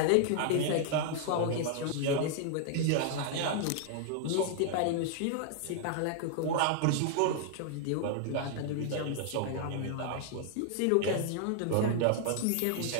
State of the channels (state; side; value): different; both; correlation 0.00